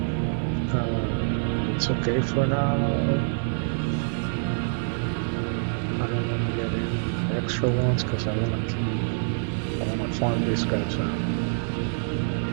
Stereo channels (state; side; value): silent; left; 61 dB below the other